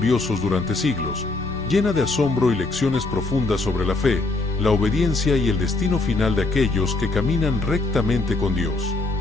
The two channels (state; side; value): quieter; right; 3.2 dB